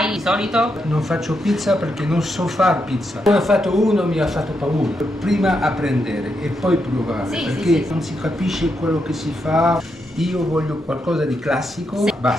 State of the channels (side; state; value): both; normal; correlation 0.82